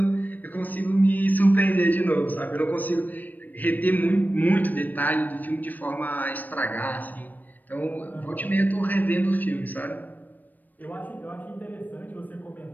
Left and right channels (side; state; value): right; late; 0.087 ms